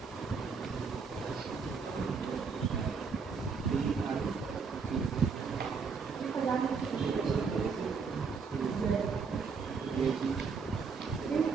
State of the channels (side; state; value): left; quieter; 5.4 dB